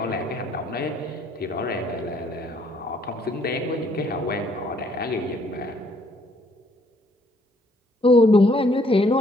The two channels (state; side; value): normal; both; correlation 0.66